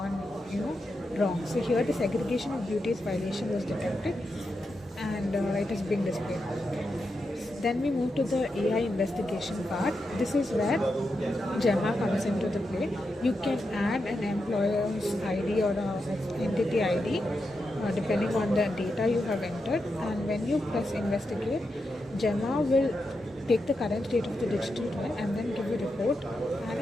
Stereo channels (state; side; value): normal; both; correlation 0.87